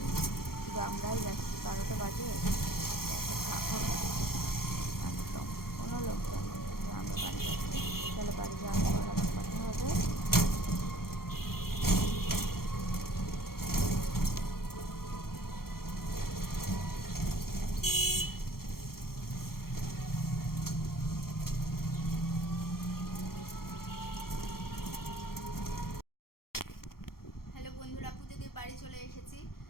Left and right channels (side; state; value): right; late; 0.93 ms